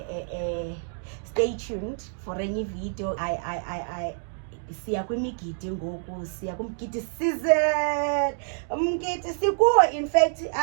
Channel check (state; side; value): silent; left; digital silence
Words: stay tuned for any video. I siya kwimigidi ngoku, siya kumgidi season, umgidi sikuwo. In fact